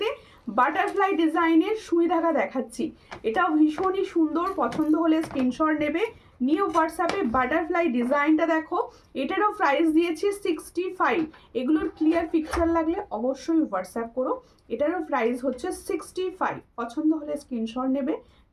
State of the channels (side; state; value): both; identical; correlation 1.00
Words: বাটারফ্লাই ডিজাইনের সুই ধাগা দেখাচ্ছি, এটাও ভীষণই সুন্দর, পছন্দ হলে স্ক্রিনশট নেবে, নিউ হোয়াটসঅ্যাপে। বাটারফ্লাই ডিজাইনটা দেখো, এটারও প্রাইস দিয়েছি 65। এগুলোর ক্লিয়ার পিকচার লাগলে অবশ্যই হোয়াটসঅ্যাপ করো, এটারও প্রাইস হচ্ছে 65, পছন্দ হলে স্ক্রিনশট নেবে,